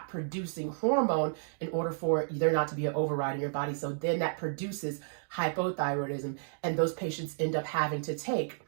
producing hormone in order for there not to be an override in your body. So then that produces hypothyroidism. And those patients end up having to take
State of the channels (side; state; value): left; silent; digital silence